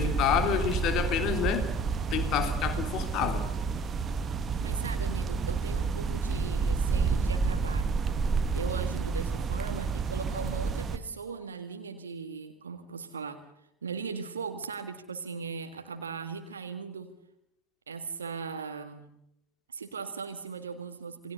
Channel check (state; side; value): normal; both; correlation 0.47